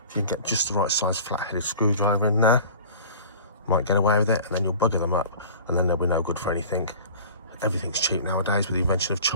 if you can get just the right size flat-headed screwdriver in there, might get away with it, and then you'll bugger them up, and then they'll be no good for anything. Everything's cheap nowadays with the invention of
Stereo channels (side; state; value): both; inverted; correlation -0.41